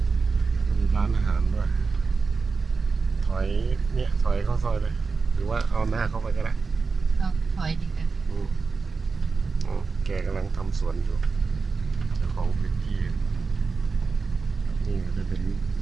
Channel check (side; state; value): left; quieter; 4.6 dB